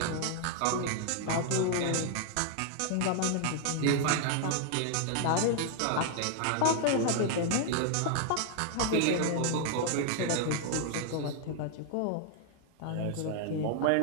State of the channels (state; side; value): different; both; correlation 0.00